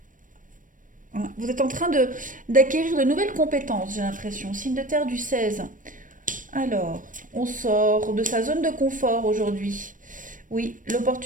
Hein, vous êtes en train d'acquérir de nouvelles compétences, j'ai l'impression. Signe de terre du 16. Alors, on sort de sa zone de confort aujourd'hui. Oui,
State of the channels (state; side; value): late; left; 0.38 ms